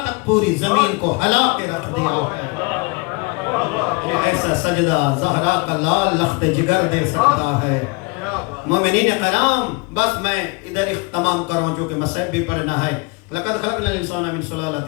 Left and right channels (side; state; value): right; quieter; 28.2 dB